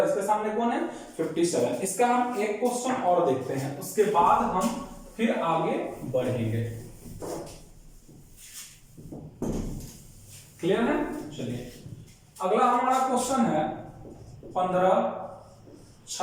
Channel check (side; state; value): both; identical; correlation 1.00